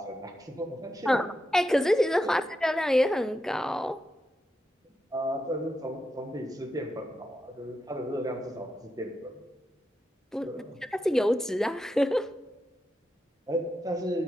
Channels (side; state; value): both; normal; correlation 0.86